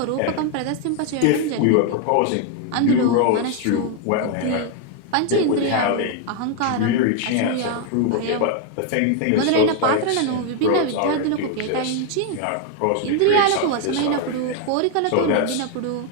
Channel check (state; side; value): different; both; correlation 0.01